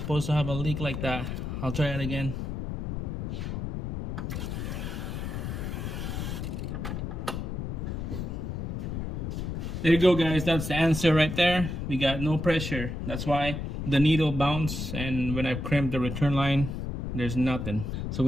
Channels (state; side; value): noise; left; rumble, 4 dB below the sound